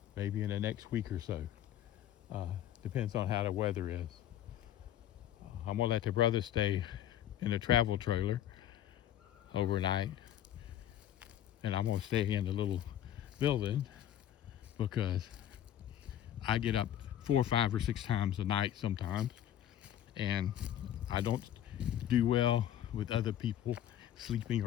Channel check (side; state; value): right; quieter; 11.3 dB